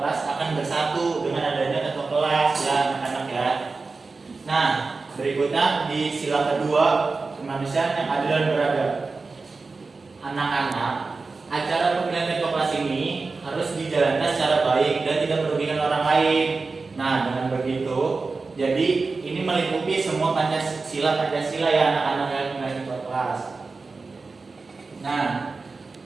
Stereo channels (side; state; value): left; quieter; 4.0 dB